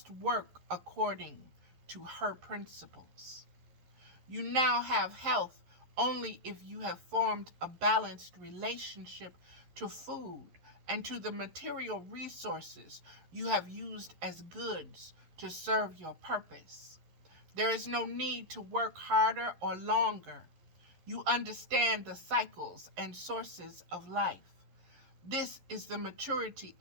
work according to her principles. You now have health only if you have formed a balanced relationship to food and to the material resources you have used as goods to serve your purpose. There is no need to work harder or longer. You understand the cycles and sources of life. This is the maturity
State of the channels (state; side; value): late; left; 11 ms